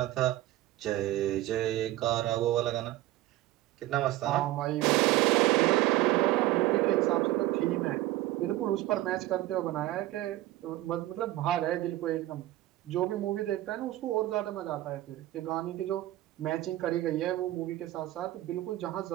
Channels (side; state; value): left; quieter; 15.7 dB